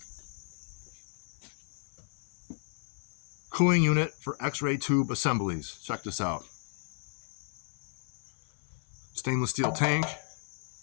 cooling unit for X-ray tube assemblies. Check this out. Stainless steel tank,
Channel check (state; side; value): silent; right; 56 dB below the other